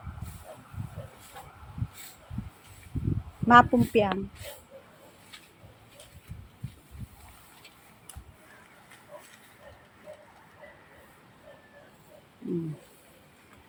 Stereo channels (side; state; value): both; identical; correlation 1.00